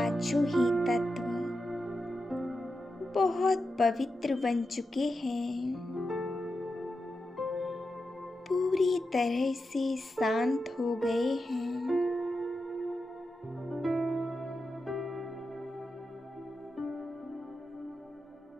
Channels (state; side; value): normal; both; correlation 0.89